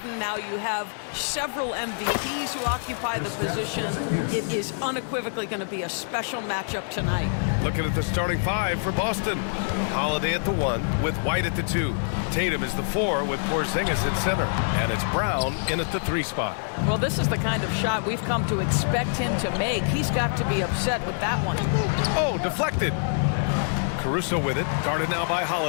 now you have several MVPs who occupy the position. It is unequivocally going to be a special matchup tonight. Looking at the starting five for Boston. Holiday at the 1 with White at the 2. Tatum is the 4 with Porzingis at center. And it's Brown in at the 3 spot. Well, this is the kind of shot we've come to expect him to make. He's got to be upset with that one. Oh, deflected. Caruso with it, guarded now by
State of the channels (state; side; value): silent; right; digital silence